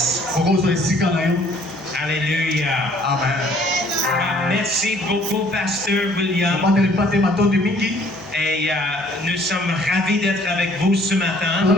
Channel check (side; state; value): right; noise; hum, 26 dB below the sound